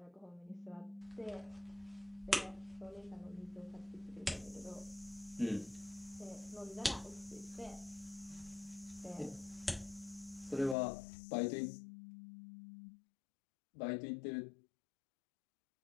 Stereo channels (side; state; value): right; drops out; at 10.8 s